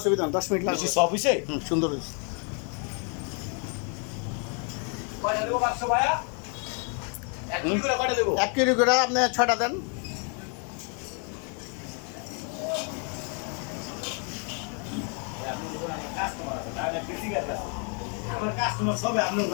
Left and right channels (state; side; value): quieter; right; 39.6 dB